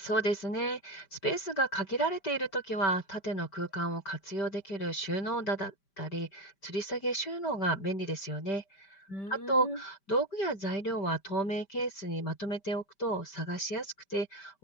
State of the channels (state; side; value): late; right; 5.1 ms